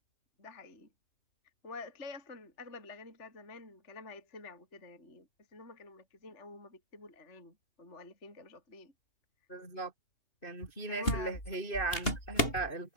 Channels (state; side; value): late; right; 2.8 ms